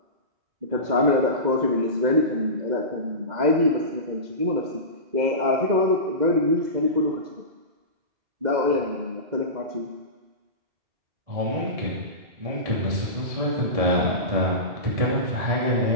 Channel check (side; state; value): left; late; 2.1 ms